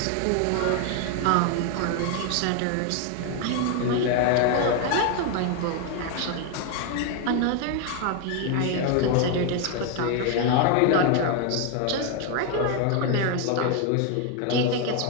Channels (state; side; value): different; both; correlation 0.01